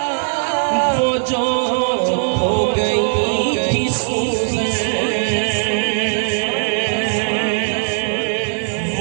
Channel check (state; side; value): silent; left; digital silence